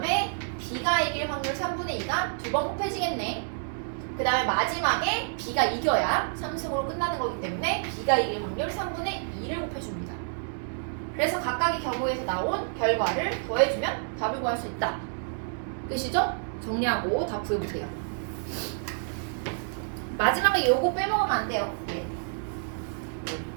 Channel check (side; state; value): left; silent; 59 dB below the other